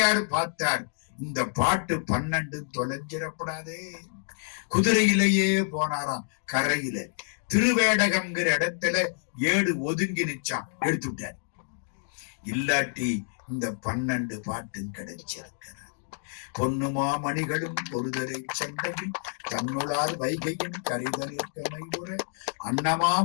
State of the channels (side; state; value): right; silent; digital silence